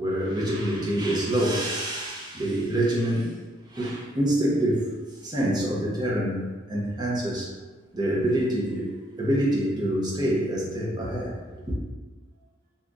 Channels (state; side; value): normal; both; correlation 0.71